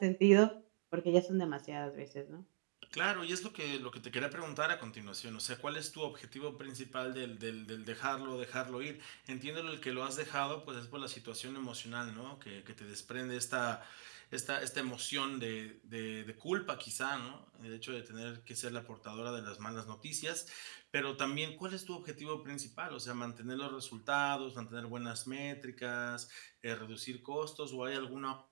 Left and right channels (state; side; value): silent; left; digital silence